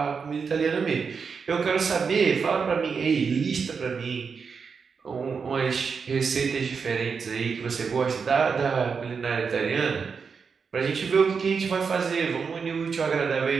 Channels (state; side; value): quieter; left; 5.7 dB